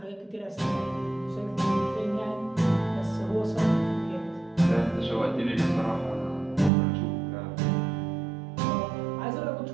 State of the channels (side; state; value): left; drops out; at 6.7 s